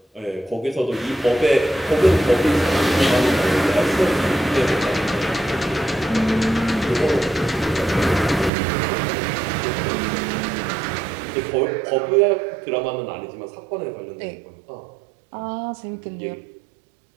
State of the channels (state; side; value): drops out; left; at 8.5 s